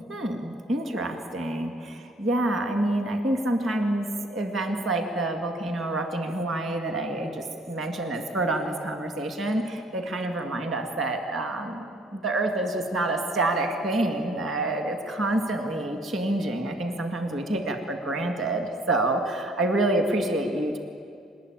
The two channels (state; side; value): normal; both; correlation 0.59